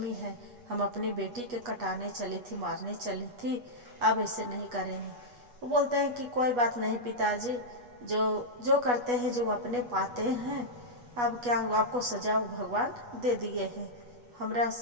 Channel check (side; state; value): left; late; 8.2 ms